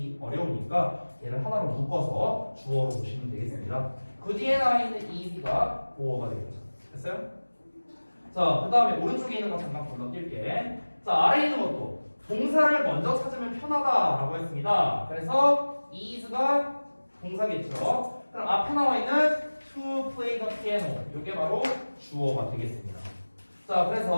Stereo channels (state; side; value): inverted; both; correlation -1.00